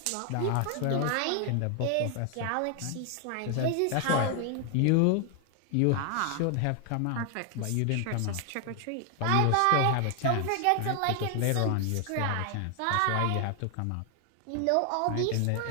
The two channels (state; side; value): different; both; correlation 0.00